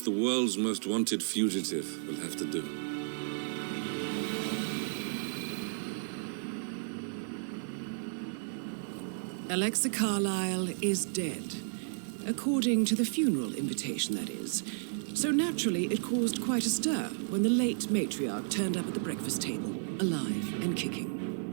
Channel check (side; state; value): left; silent; digital silence